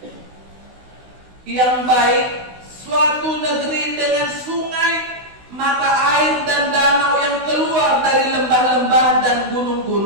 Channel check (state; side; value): late; left; 16 ms